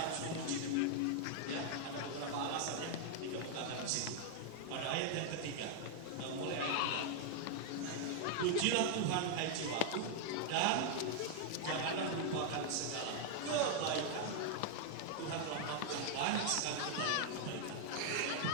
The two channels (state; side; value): different; both; correlation 0.00